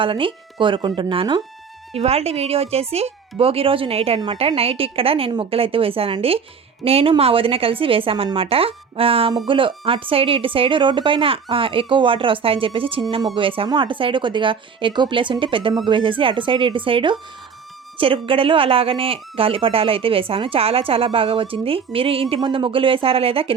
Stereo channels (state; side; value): quieter; left; 6.1 dB